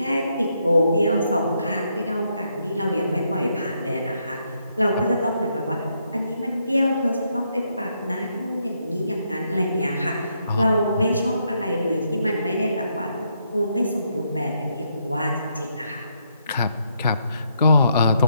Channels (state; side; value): inverted; both; correlation -0.77